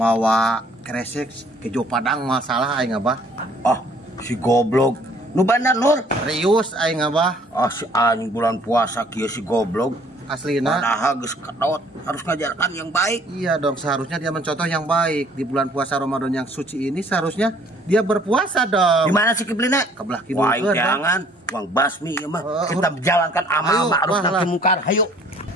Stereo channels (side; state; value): both; normal; correlation 0.58